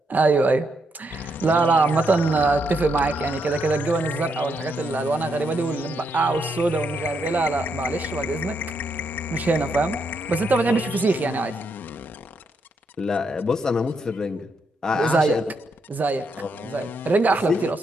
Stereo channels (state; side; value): normal; both; correlation 0.78